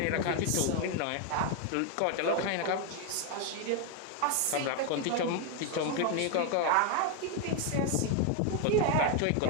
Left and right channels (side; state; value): both; different; correlation 0.01